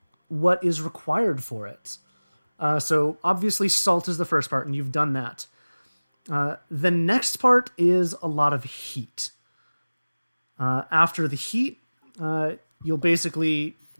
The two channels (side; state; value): both; inverted; correlation -1.00